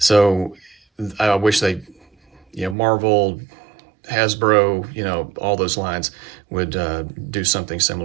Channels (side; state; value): left; drops out; at 2.8 s